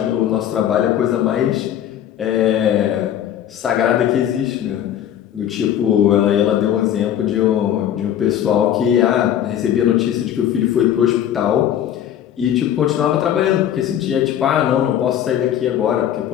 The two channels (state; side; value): quieter; right; 10.6 dB